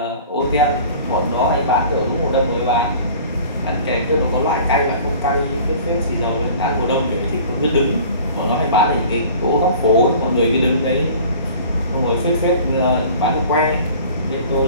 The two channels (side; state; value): both; inverted; correlation -0.45